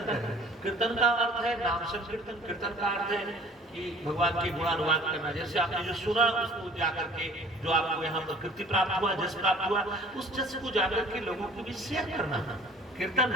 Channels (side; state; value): both; normal; correlation 0.50